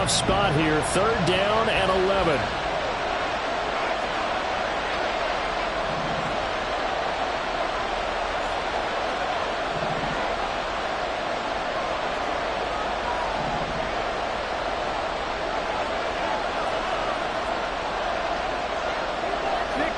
spot here. 3rd down and 11.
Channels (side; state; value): both; identical; correlation 1.00